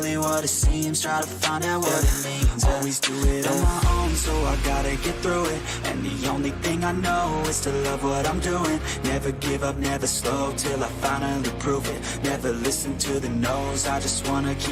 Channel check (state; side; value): identical; both; correlation 1.00